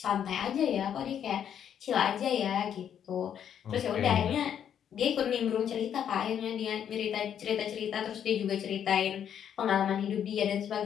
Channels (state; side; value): quieter; right; 9.1 dB